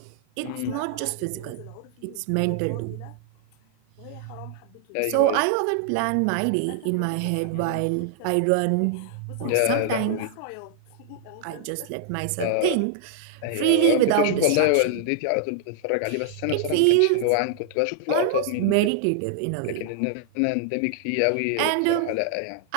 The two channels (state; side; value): different; both; correlation -0.01